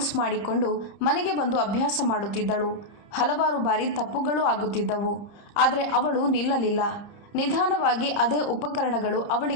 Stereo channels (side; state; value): right; late; 30 ms